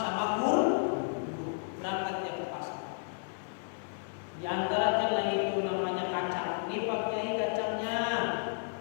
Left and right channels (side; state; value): right; silent; digital silence